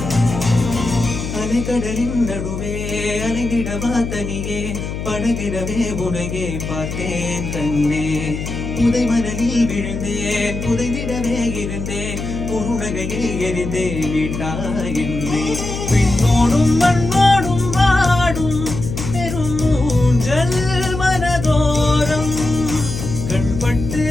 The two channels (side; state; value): left; noise; hum, 6 dB below the sound